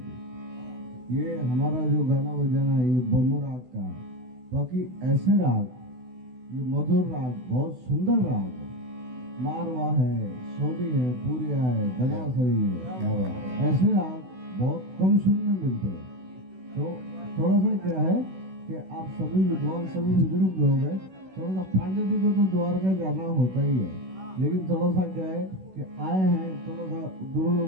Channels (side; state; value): left; late; 16 ms